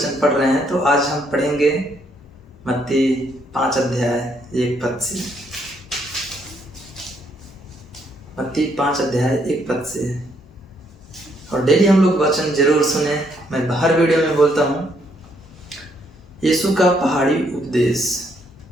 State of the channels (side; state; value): both; normal; correlation 0.72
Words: पढ़ रहे हैं, तो आज हम पढ़ेंगे मत्ती 5 अध्याय 1 पद से। मत्ती 5 अध्याय 1 पद से। और डेली हम लोग वचन जरूर सुने। मैं हर वीडियो में बोलता हूँ, यीशु का पहाड़ी उपदेश।